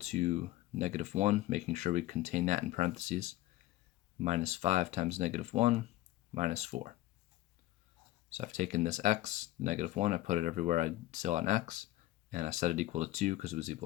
-1, making sure we contain that in parentheses, minus 5 times -1, minus 4. So I've taken this x, -1, I put it everywhere I saw on x, and I set it equal to 2 because it was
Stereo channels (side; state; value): right; quieter; 16.2 dB